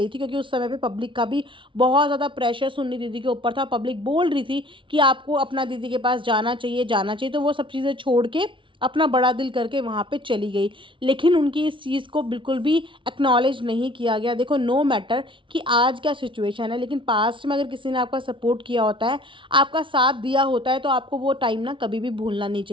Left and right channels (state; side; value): late; left; 0.25 ms